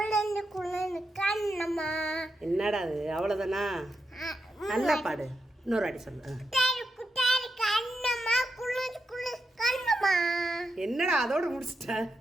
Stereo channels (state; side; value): normal; both; correlation 0.86